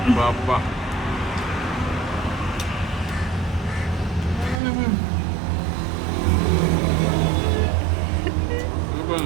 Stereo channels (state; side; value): drops out; left; at 4.6 s